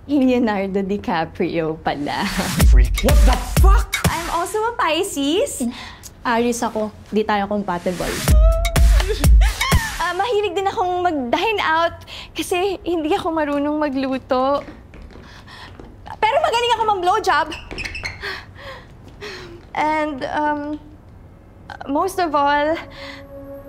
Leonardo DiCaprio pala. Freak. What the fuck? I'm also a Pisces. Aries ako. Di tayo compatible. Mahilig din akong mag-dine out kasi hindi ako marunong magluto. Pero magaling ako mag-blowjob. And most of all,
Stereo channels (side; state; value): both; identical; correlation 1.00